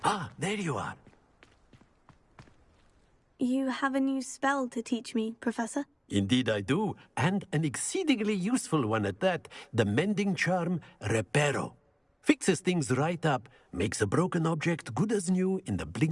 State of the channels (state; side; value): identical; both; correlation 1.00